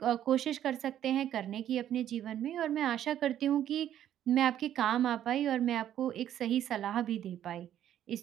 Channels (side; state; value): left; quieter; 11.1 dB